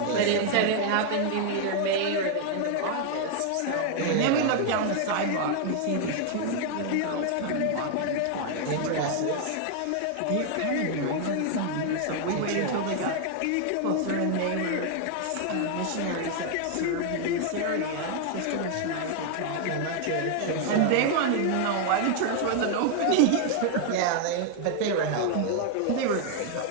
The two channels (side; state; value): both; different; correlation 0.00